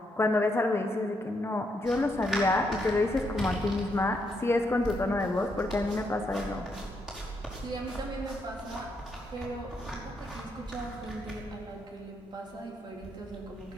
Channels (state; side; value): normal; both; correlation 0.78